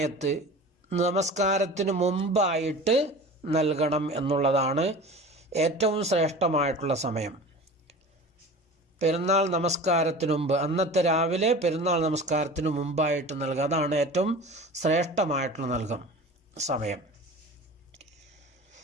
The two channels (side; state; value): both; normal; correlation 0.37